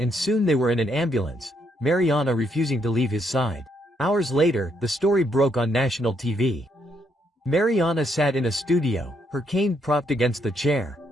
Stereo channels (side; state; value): both; normal; correlation 0.74